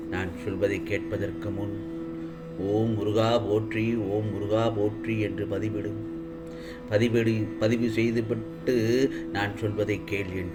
நான் சொல்வதை கேட்பதற்கு முன் ஓம் முருகா போற்றி, ஓம் முருகா போற்றி என்று பதிவு செய்துவிட்டு நான் சொல்வதை கேள்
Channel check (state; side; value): identical; both; correlation 1.00